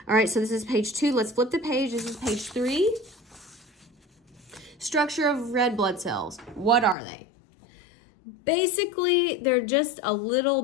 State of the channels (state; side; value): drops out; right; at 7.0 s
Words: All right, so this is page 2. Let's flip the page. This is page 3. Structure of red blood cells. What are they? Basically, they're just a little